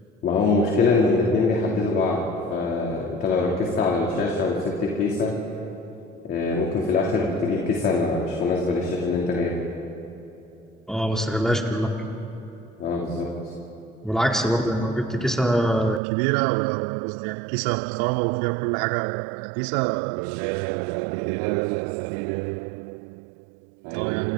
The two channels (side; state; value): left; drops out; at 16.0 s